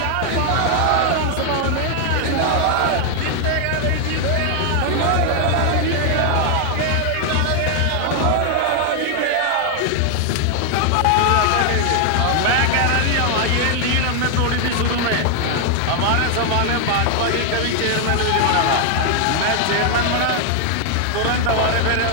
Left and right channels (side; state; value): both; different; correlation 0.00